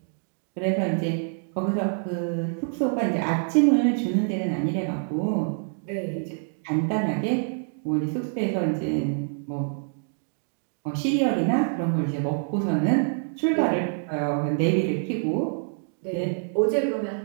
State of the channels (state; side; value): silent; left; 61 dB below the other